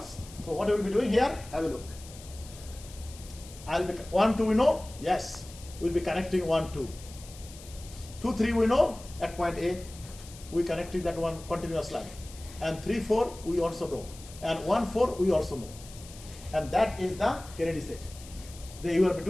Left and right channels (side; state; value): left; noise; hiss, 18 dB below the sound